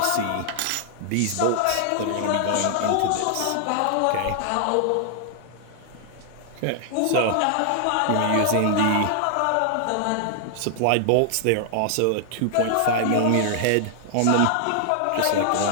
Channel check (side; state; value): both; different; correlation -0.01